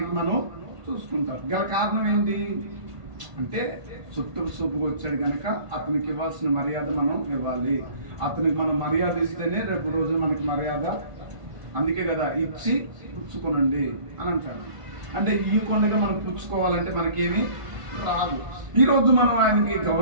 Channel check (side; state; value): left; late; 1.5 ms